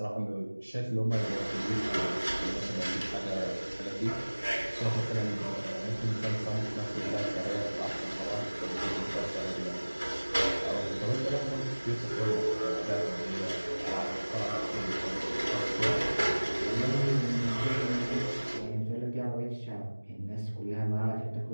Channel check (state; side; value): inverted; both; correlation -1.00